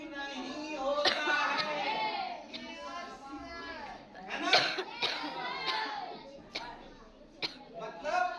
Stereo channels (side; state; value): both; identical; correlation 1.00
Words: नहीं होता है ना। मतलब